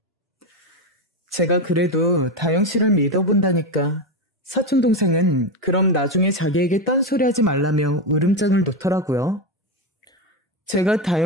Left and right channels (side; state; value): both; normal; correlation 0.12